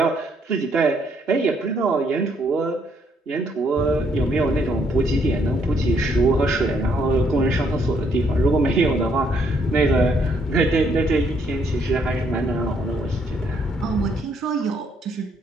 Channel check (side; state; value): both; normal; correlation 0.70